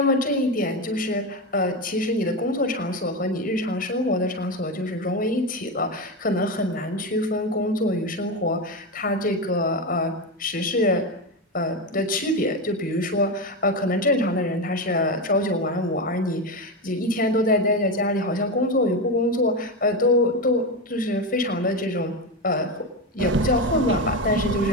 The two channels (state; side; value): normal; both; correlation 0.15